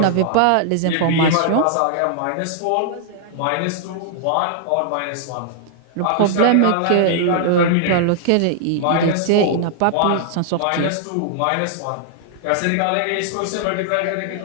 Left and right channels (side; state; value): both; different; correlation -0.01